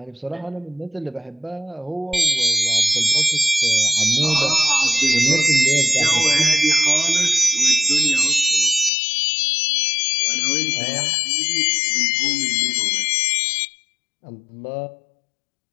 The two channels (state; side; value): drops out; right; at 8.9 s